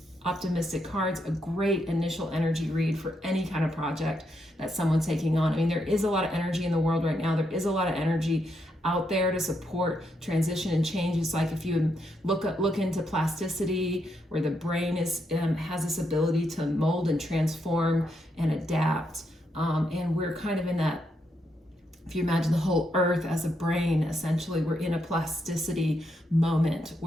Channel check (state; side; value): normal; both; correlation 0.80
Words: optimistic cards, a great initial energy read for any kind of project that someone's taking on. I mean, there is a lot of energy in the world right now. There is a lot of energy out there to support transition and change. It's like if you look into plasticity, where the brain is has this ability to mold and transform and adapt, and we're kind of in that. If you imagine the whole earth as a brain, essentially we're in a plasticity moment